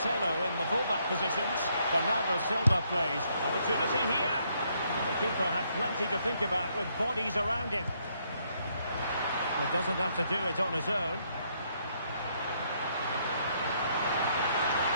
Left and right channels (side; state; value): both; inverted; correlation -0.72